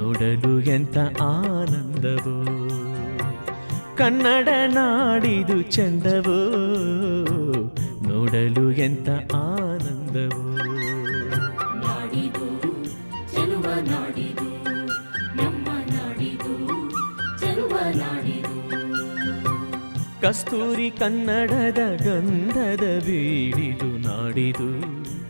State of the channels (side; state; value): both; inverted; correlation -1.00